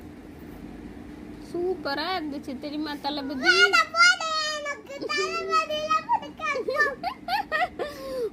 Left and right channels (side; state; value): both; identical; correlation 1.00